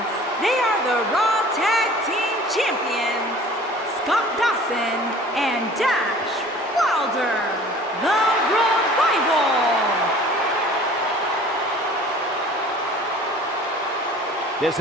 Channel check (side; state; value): both; normal; correlation 0.47